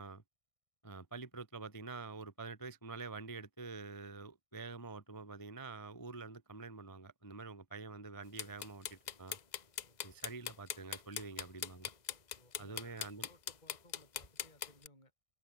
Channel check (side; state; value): right; late; 1.6 ms